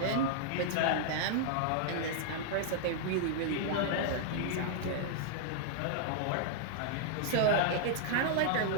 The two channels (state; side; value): different; both; correlation -0.01